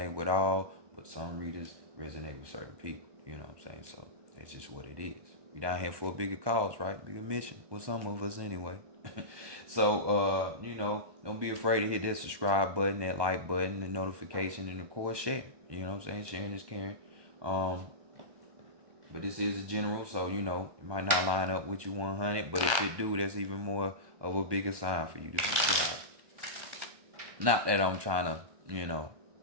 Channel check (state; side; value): late; left; 1.1 ms